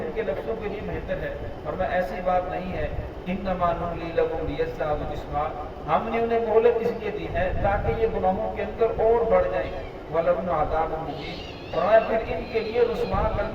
کے نفسوں کے لیے بہتر ہے، فرمایا ایسی بات نہیں ہے، انما نملی لہم لیزدادوا اثما، ہم نے انہیں مہلت اس لیے دی ہے تاکہ یہ گناہوں کے اندر اور بڑھ جائیں، ولہم عذاب مہین، فرمایا پھر ان کے لیے رسوا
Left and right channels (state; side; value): identical; both; correlation 1.00